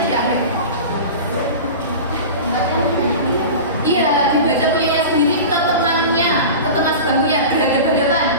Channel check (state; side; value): inverted; both; correlation -0.31